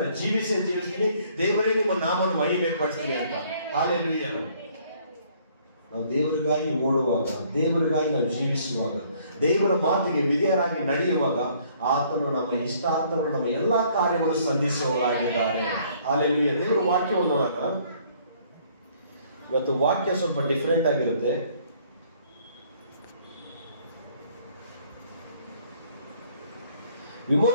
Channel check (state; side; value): inverted; both; correlation -0.61